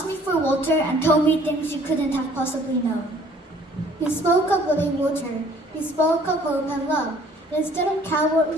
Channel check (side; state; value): both; normal; correlation 0.57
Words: me for water and told me things you couldn't have possibly known. You spoke of living water. You spoke of hope and love. Instead of